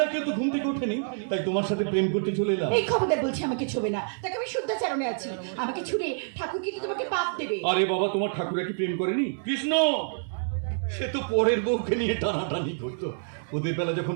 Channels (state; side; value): silent; left; 60 dB below the other